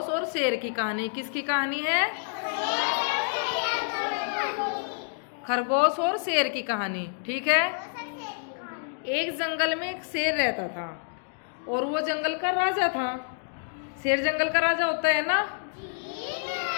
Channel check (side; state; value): right; silent; digital silence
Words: और शेर की कहानी। किसकी कहानी है? खरगोश और शेर की कहानी। ठीक है। एक जंगल में एक शेर रहता था और वो जंगल का राजा था। शेर जंगल का राजा होता है ना।